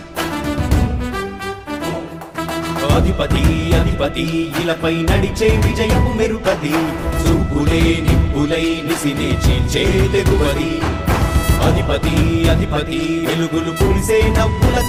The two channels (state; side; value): identical; both; correlation 1.00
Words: అధిపతి అధిపతి ఇలపై నడిచే విజయము మెరుపది చూపులే నిప్పులై నిసినే చీల్చే తెగువది అధిపతి అధిపతి వెలుగులు పులిసే నవ్వుల